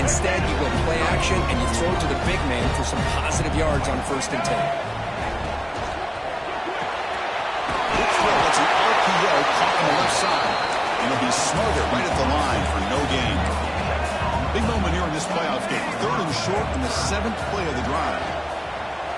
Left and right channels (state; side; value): identical; both; correlation 1.00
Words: you go play action, and you throw to the big man for some positive yards on 1st and 10. That's an RPO caught on the left side. And it'll be smothered right at the line for no gain. Big moment here in this playoff game. 3rd and short in the 7th play of the drive.